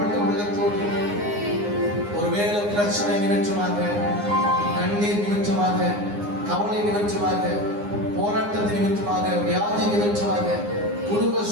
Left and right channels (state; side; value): late; left; 9.7 ms